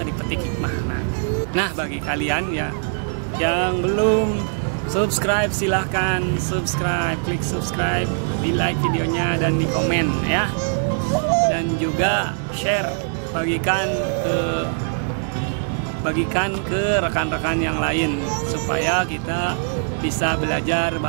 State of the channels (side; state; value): left; silent; digital silence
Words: dipetik hikmahna. Nah bagi kalian ya yang belum subscribe, silahkan subscribe, klik subscribe, di like videonya dan di komen ya, dan juga share, bagikan ke rekan-rekan yang lain supaya kita bisa belajar